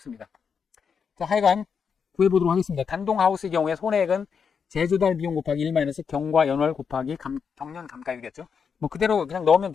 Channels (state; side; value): quieter; right; 6.4 dB